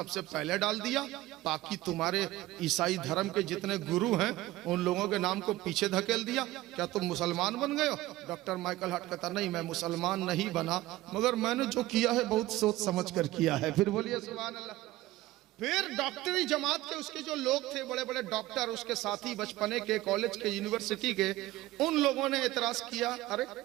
पहले डाल दिया, बाकी तुम्हारे ईसाई धर्म के जितने गुरु हैं उन लोगों के नाम को पीछे धकेल दिया। क्या तुम मुसलमान बन गए हो? डॉक्टर माइकल हार्ट कहता नहीं, मैं मुसलमान नहीं बना, मगर मैंने जो किया है बहुत सोच समझ कर किया है। फिर बोलिए सुभान अल्लाह। फिर डॉक्टरी जमात के उसके जो लोग थे, बड़े बड़े डॉक्टर, उसके साथी बचपने के, कॉलेज के, यूनिवर्सिटी के, उन लोगों ने एतराज किया, अरे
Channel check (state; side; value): quieter; left; 17.2 dB